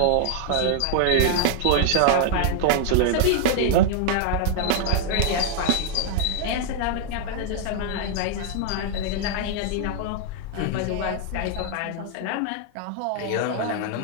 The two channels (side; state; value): both; different; correlation 0.00